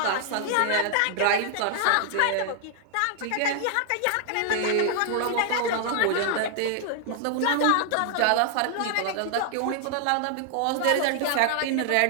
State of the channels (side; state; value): both; different; correlation 0.00